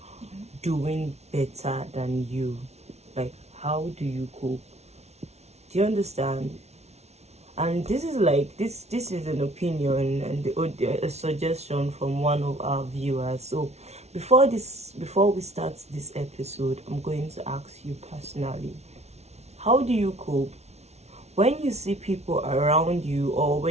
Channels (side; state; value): left; late; 0.31 ms